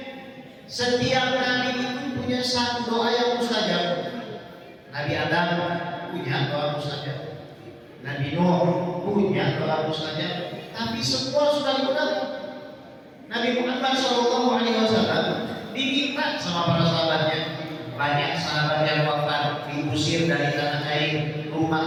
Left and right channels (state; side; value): identical; both; correlation 1.00